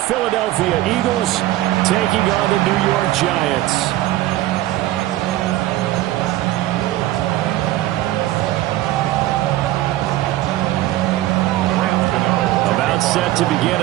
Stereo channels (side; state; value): left; quieter; 15.6 dB